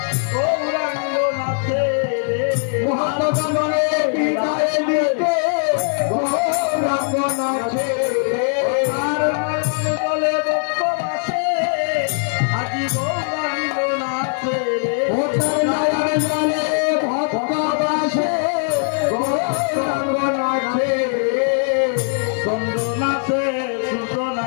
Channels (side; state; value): right; silent; 66 dB below the other